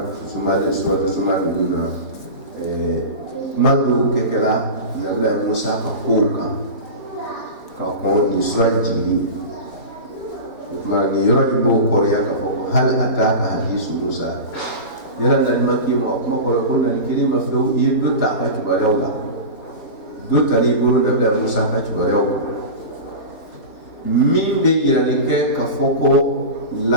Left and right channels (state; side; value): late; right; 4.7 ms